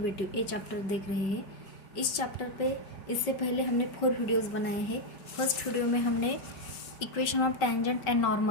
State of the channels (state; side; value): late; right; 5.3 ms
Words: ये चैप्टर देख रहे हैं। इस चैप्टर पे इससे पहले हमने 4 वीडियोस बनाए हैं। फर्स्ट वीडियो में हमने equation of tangent and